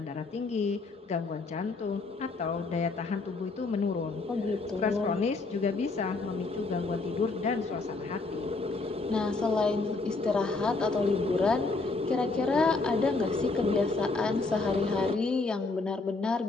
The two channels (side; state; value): right; quieter; 3.7 dB